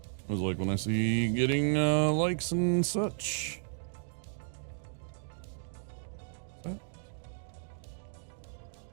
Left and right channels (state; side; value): silent; left; digital silence